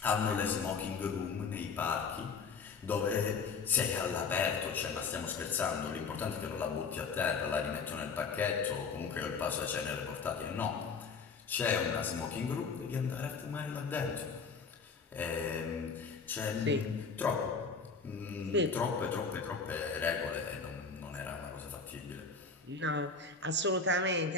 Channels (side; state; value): right; quieter; 5.0 dB